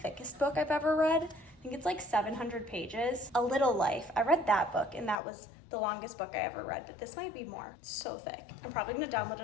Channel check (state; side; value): drops out; right; at 5.2 s